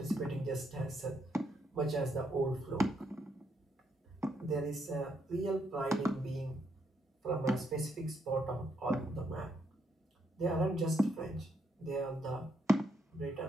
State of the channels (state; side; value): normal; both; correlation 0.76